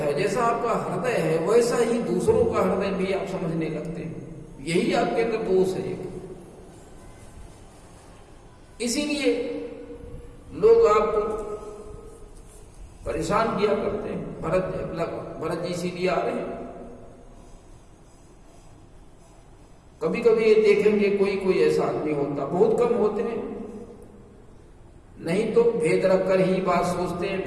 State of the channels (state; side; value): identical; both; correlation 1.00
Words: जैसा आपका हृदय है, वैसा ही दूसरों का हृदय भी आप समझने लगते हैं। यही आपके अंदर दोष है एक। इसीलिए लोग आपको परेशान किया करते हैं। भरत जी इसीलिए आ रहे हैं। कभी कभी ये देखेंगे कोई ऐसा आदमी होता, बहुत कम होते हैं, नहीं तो भेद रखकर ही बात सोचते हैं,